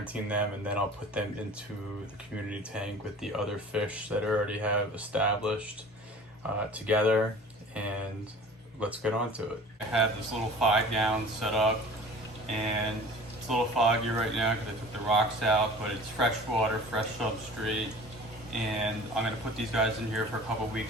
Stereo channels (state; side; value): normal; both; correlation 0.43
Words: them, and then I'll put them into the community tank with the other fish that I already have established together. And let's get on to it. I have this little 5 gallon set up, and it's a little foggy right now because I took the rocks out, but it's fresh water, fresh substrate, and I'm gonna put these guys in here for a couple